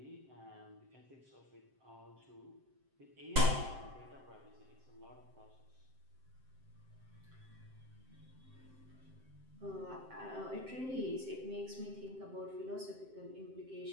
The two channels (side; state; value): left; late; 7.7 ms